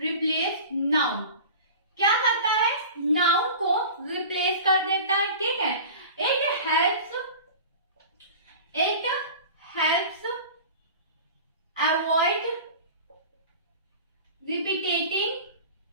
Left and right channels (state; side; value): inverted; both; correlation -0.36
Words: noun. क्या करता है? नाउन को रिप्लेस कर देता है, ठीक है। It helps